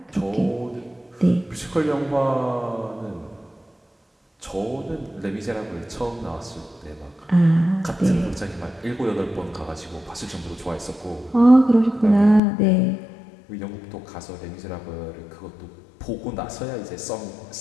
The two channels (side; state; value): right; drops out; at 12.4 s